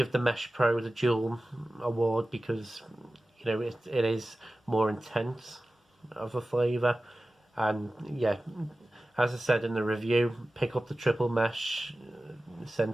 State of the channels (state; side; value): normal; both; correlation 0.96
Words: the Mesh Pro the dual award because it is more intense of a flavour. And yeah, as I said in the review, pick up the triple mesh